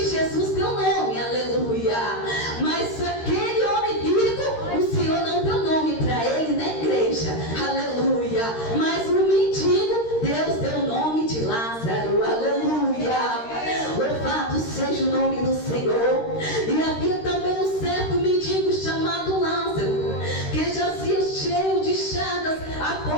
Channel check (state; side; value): late; right; 13 ms